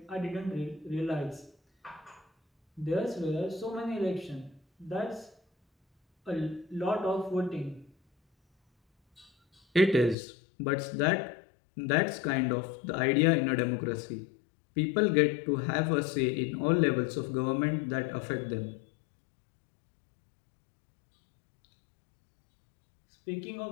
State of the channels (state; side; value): drops out; right; at 10.2 s